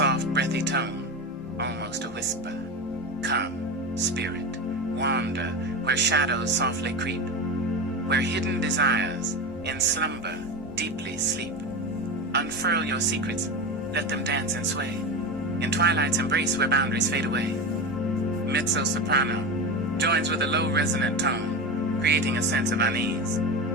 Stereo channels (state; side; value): normal; both; correlation 0.22